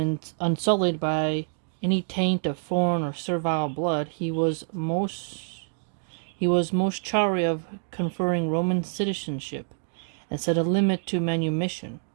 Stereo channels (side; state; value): left; silent; 60 dB below the other